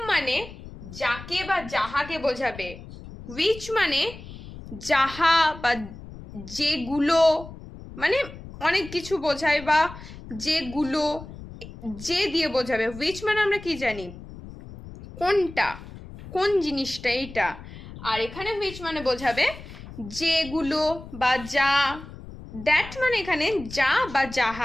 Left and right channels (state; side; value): noise; left; rumble, 14 dB below the sound